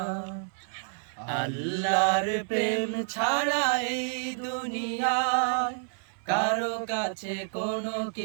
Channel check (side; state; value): left; silent; 59 dB below the other